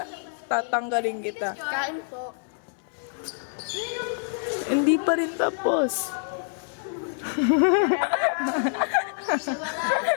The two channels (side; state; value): right; silent; digital silence